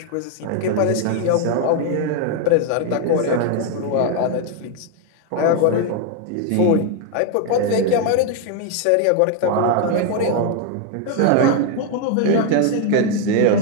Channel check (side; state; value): both; different; correlation 0.01